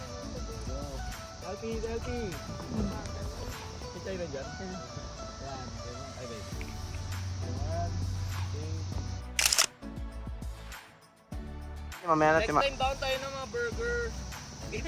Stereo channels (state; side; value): identical; both; correlation 1.00